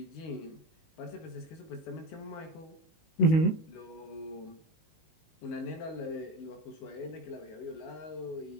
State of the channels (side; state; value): right; late; 19 ms